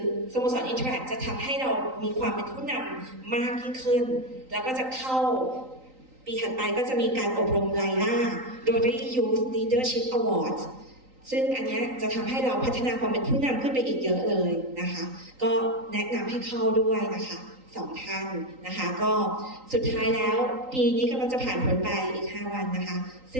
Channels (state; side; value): late; left; 3.9 ms